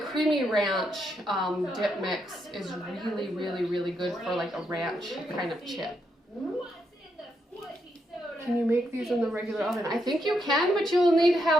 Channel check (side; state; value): both; normal; correlation 0.80